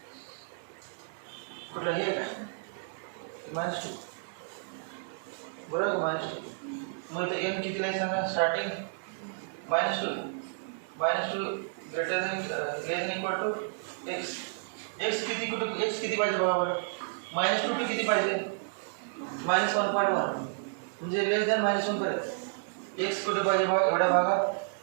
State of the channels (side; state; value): left; silent; 57 dB below the other